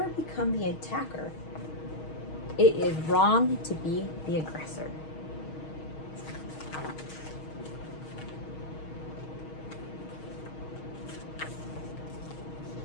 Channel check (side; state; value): right; late; 6.4 ms